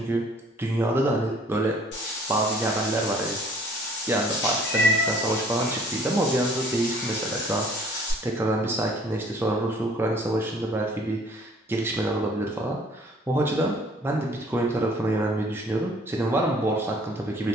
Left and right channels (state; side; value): normal; both; correlation 0.56